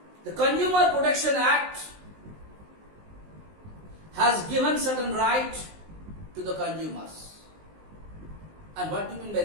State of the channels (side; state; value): left; late; 19 ms